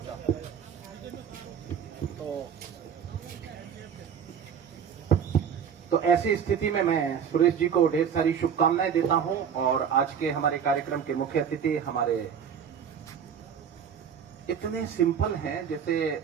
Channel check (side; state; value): left; quieter; 7.7 dB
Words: तो ऐसी स्थिति में मैं सुरेश जी को ढेर सारी शुभकामनाएं देता हूं। और आज के हमारे कार्यक्रम के मुख्य अतिथि हमारे इतने सिंपल हैं, जैसे